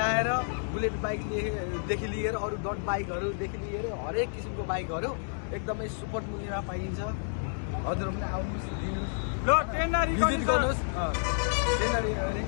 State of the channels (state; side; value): silent; right; digital silence